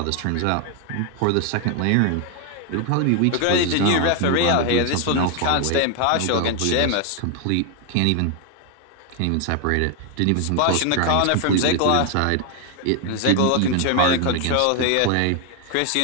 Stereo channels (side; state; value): both; different; correlation 0.01